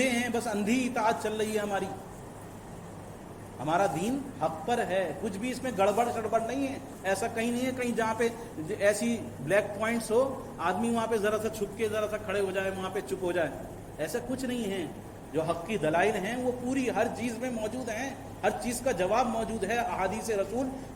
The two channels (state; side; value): identical; both; correlation 1.00